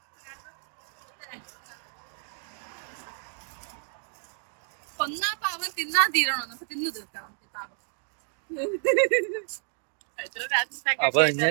കൊന്നാ പാവം തിന്നാ തീരണോ? അപ്പൊ തിന്നു തീർക്കണം പാവം. അപ്പൊ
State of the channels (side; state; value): left; silent; 58 dB below the other